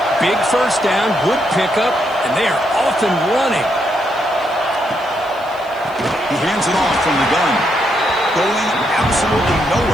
Big first down, good pickup, and they are off and running. He hands it off from the gun. Going absolutely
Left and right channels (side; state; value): left; noise; hiss, 27 dB below the sound